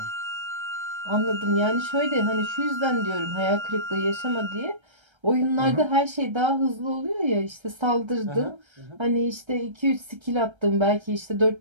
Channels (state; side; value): late; left; 1.3 ms